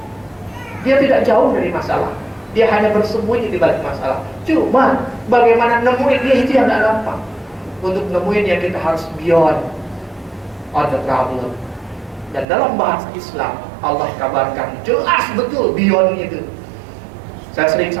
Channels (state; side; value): drops out; left; at 12.5 s